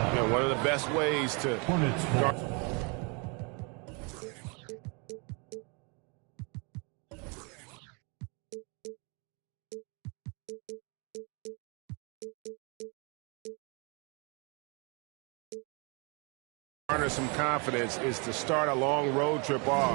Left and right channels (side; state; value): left; quieter; 32.7 dB